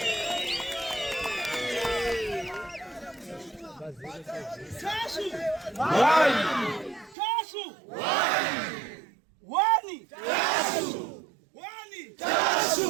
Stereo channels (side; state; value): left; drops out; at 7.2 s